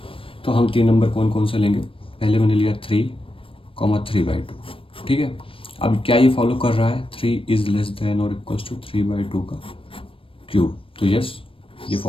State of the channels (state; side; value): late; right; 0.26 ms